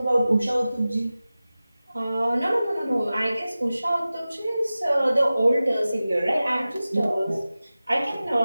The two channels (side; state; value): both; inverted; correlation -0.96